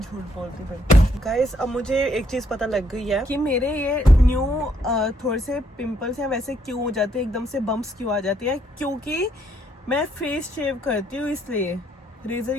बोलती फिर। गाइस अब मुझे एक चीज पता लग गई है कि मेरे ये न्यू थोड़े से पिंपल्स हैं वैसे क्यों हो जाते हैं, एकदम से बम्प्स क्यों आ जाती है, क्योंकि मैं फेस शेव करती हूँ, इसलिए रेजर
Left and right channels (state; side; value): normal; both; correlation 0.71